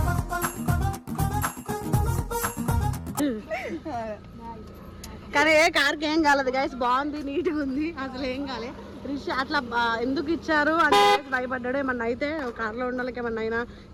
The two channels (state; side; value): identical; both; correlation 1.00